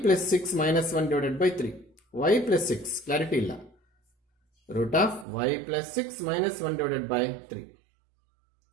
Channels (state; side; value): drops out; left; at 5.2 s